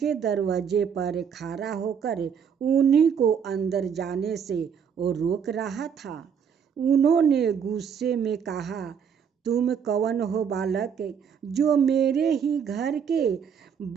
दरवाजे पर खड़ा होकर उन्हीं को अंदर जाने से रोक रहा था। उन्होंने गुस्से में कहा, तुम कौन हो बालक, जो मेरे ही घर के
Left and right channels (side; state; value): left; quieter; 7.3 dB